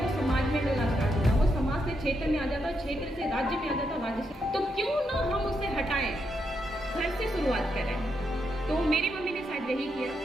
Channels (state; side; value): normal; both; correlation 0.81